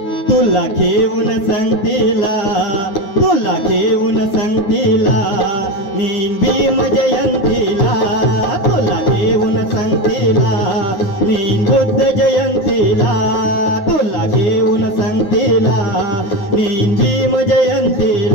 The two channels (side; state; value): right; late; 9.5 ms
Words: तुला घेऊन संगतीला, तुला घेऊन संगतीला, नीन भीम जयंतीला, तुला घेऊन संगतीला, नीन बुद्ध जयंतीला, तुला घेऊन संगतीला, नीन भीम